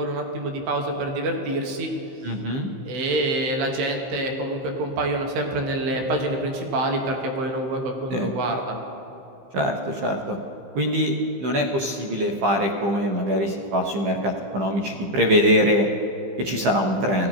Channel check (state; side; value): late; left; 15 ms